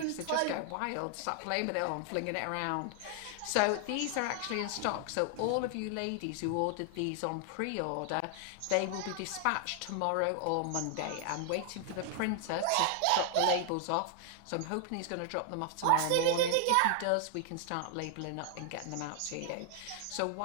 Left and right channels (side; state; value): both; different; correlation 0.00